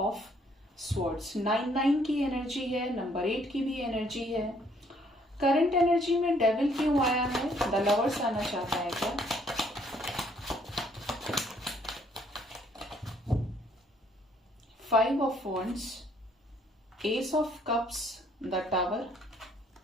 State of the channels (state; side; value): normal; both; correlation 0.65